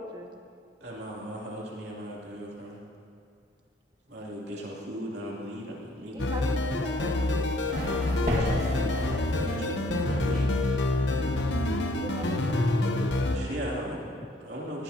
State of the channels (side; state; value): both; normal; correlation 0.63